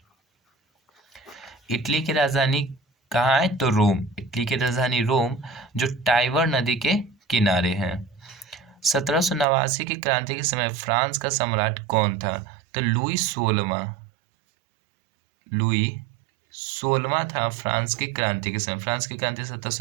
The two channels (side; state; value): left; drops out; at 9.5 s